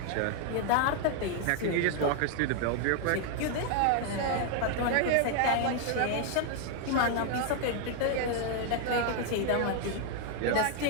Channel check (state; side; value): different; both; correlation 0.00